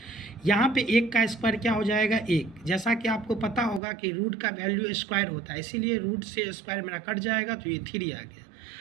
यहाँ पे 1 का स्क्वायर क्या हो जाएगा 1, जैसा कि आपको पता होगा कि रूट का वैल्यू स्क्वायर होता है, इसीलिए रूट से स्क्वायर मेरा कट जाएगा तो ये 3 आ गया।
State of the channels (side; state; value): left; drops out; at 3.8 s